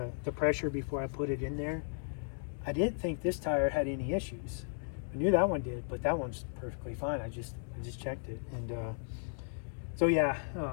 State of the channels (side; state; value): right; silent; digital silence